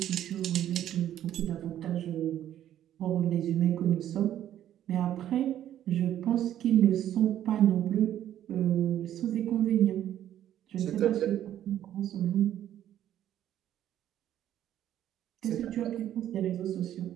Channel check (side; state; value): left; quieter; 11.5 dB